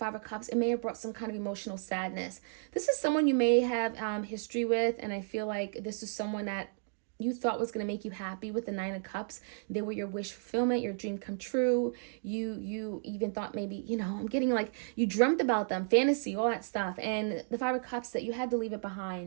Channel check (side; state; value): left; silent; digital silence